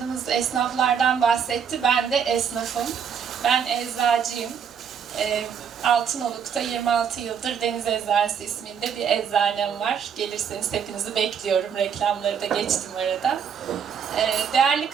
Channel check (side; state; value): left; quieter; 7.5 dB